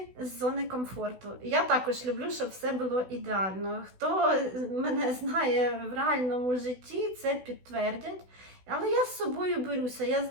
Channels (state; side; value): late; left; 16 ms